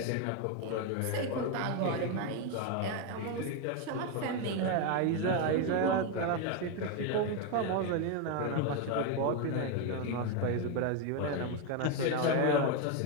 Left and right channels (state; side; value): different; both; correlation 0.02